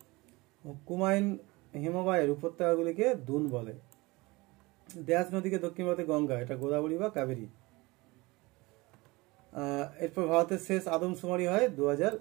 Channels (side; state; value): left; quieter; 22.9 dB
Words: কুমায়ুন হিমবাহের উপত্যকাগুলিকে দুন বলে। ড্যাশ নদীকে দক্ষিণ ভারতে গঙ্গা, এটা গোদাবরী বা কাবেরী। এরপর ভারতের শেষ আদমশুমারি হয়